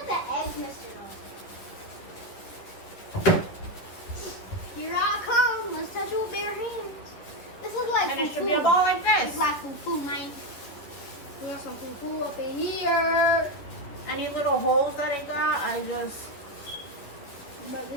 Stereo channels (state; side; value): late; right; 10 ms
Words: the eggs missed it all. Here I come. Let's touch it with bare hands. This is like And it should fufu. be a ball like It's this. like fufu, man. We got some fufu up in here. Any little holes that it got, I just But